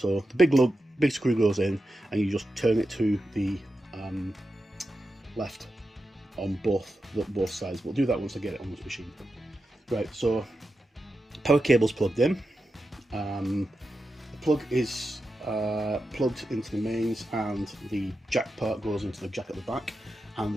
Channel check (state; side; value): normal; both; correlation 0.90